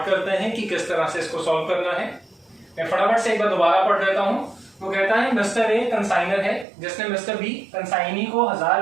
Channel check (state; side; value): drops out; left; at 6.7 s